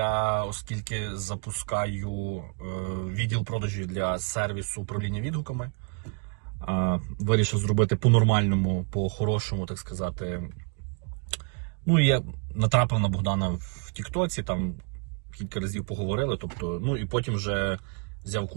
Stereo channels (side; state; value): left; quieter; 36.3 dB